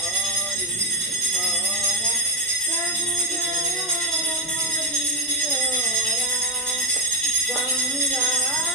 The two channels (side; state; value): both; normal; correlation 0.05